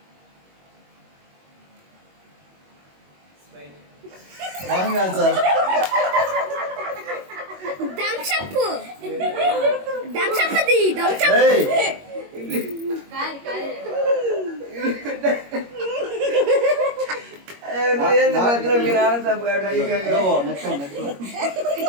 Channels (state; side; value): late; left; 21 ms